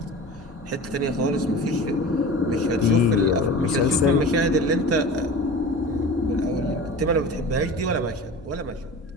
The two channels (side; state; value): both; normal; correlation 0.35